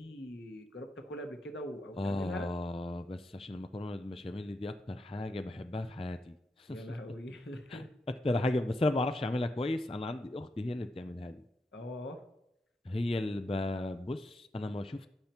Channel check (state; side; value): normal; both; correlation 0.84